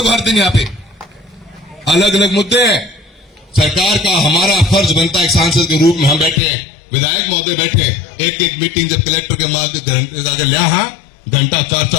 को हर दिन। यहाँ पे अलग अलग मुद्दे हैं, सरकार का हमारा फर्ज बनता है एक सांसद के रूप में, हम बैठे हैं, विधायक महोदय बैठे, एक एक मीटिंग जब कलेक्टर के माध्यम लिया, घंटा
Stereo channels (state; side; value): drops out; right; at 6.4 s